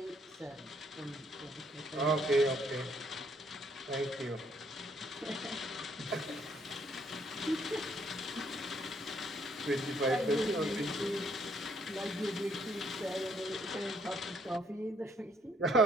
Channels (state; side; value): normal; both; correlation 0.68